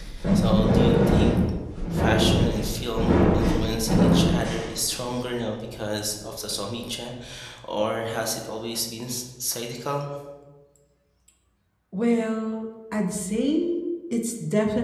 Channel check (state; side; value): identical; both; correlation 1.00